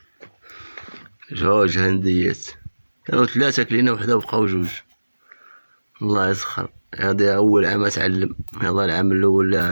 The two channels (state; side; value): inverted; both; correlation -1.00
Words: جوج هنديات كانوا ثلاثة كلينا وحدة وبقاو جوج. الله يسخر، هادي أول عام أتعلم. يلا العام الأول